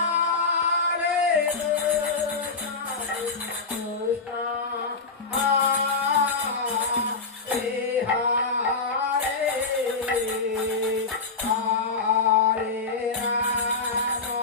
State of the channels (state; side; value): quieter; right; 4.2 dB